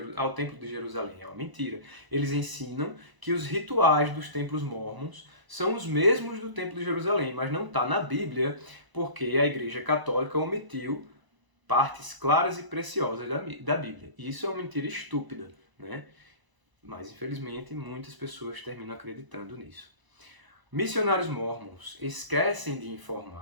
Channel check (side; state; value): left; late; 1.0 ms